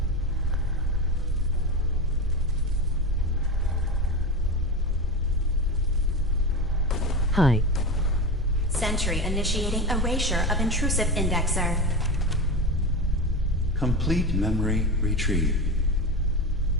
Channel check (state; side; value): normal; both; correlation 0.22